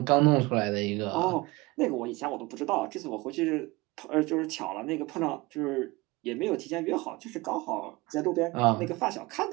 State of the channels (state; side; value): quieter; left; 22.8 dB